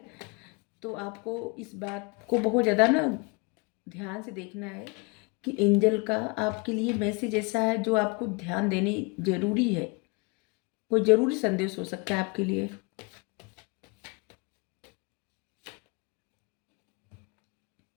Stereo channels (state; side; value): quieter; right; 30.1 dB